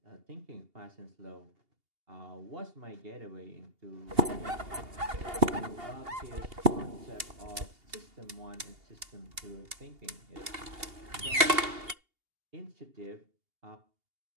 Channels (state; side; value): late; left; 2.8 ms